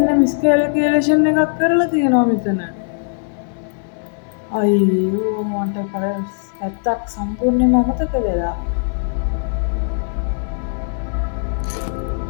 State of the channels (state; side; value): silent; right; digital silence